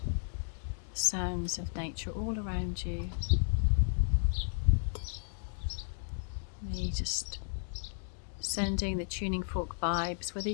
The sounds of nature all around you. Me just sending the tuning fork vibes, whether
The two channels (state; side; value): silent; right; digital silence